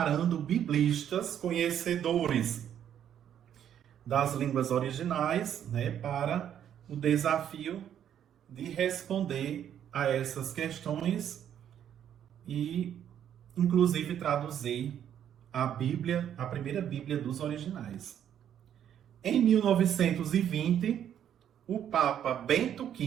biblistas conhecedores das línguas originais, né, para o desafio de responder a essas questões e, inclusive, traduzir a Bíblia, a primeira Bíblia dos originais. Em 1920, o Papa Bento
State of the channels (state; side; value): quieter; left; 9.8 dB